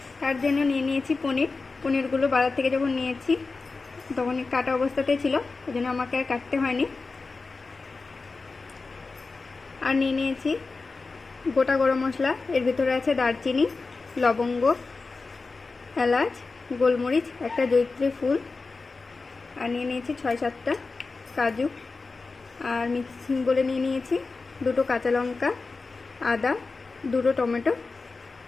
তার জন্য নিয়ে নিয়েছি পনিরগুলো বাজার থেকে যখন নিয়েছি তখন কাটা অবস্থাতেই ছিল, ওই জন্য আমাকে আর কাটতে হয়নি। আর নিয়ে নিয়েছি গোটা গরম মশলা, এর ভিতরে আছে দারচিনি, লবঙ্গ, এলাচ, গোলমরিচ, একটা জয়িত্রী ফুল, আর নিয়ে নিয়েছি 6-7টা কাজু, আর মিক্সিং বলে নিয়ে নিয়েছি 2টো কাঁচা লঙ্কা, আদা, 2টো টমেটো।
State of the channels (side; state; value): right; quieter; 4.0 dB